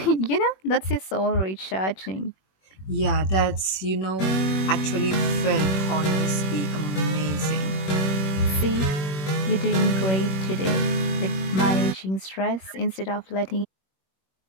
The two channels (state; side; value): late; right; 21 ms